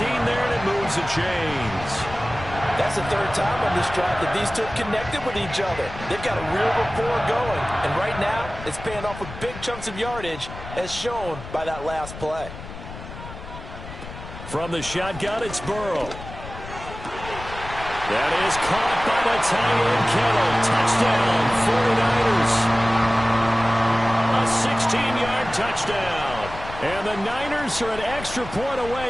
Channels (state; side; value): noise; left; rumble, 12 dB below the sound